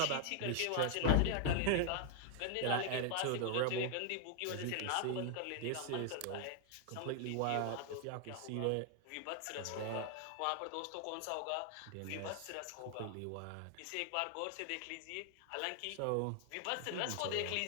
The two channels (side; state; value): both; different; correlation 0.00